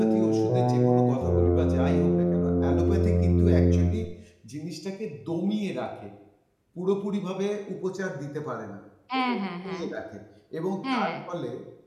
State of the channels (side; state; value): both; identical; correlation 1.00